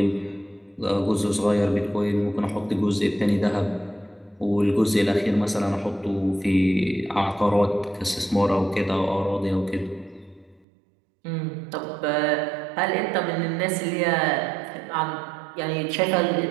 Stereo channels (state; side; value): drops out; left; at 10.7 s